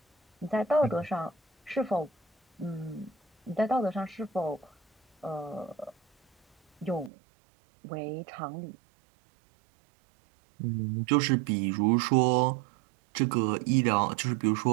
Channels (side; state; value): left; drops out; at 7.1 s